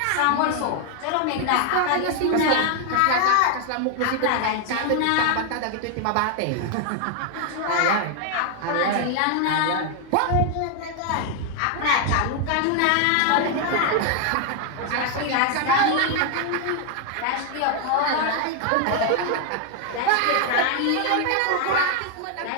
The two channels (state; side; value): different; both; correlation 0.00